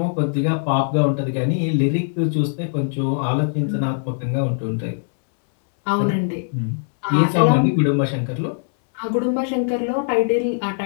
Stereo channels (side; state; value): right; silent; 65 dB below the other